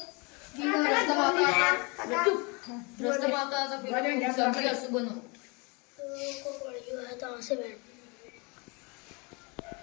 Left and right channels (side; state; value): right; quieter; 29.8 dB